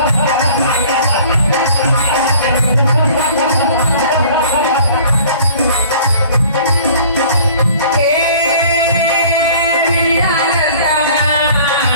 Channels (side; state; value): both; inverted; correlation -0.50